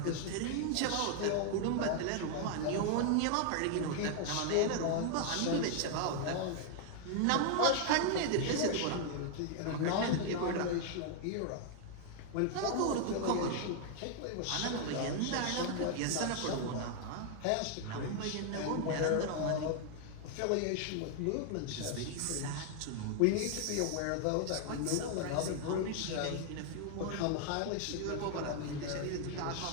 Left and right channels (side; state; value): both; different; correlation 0.00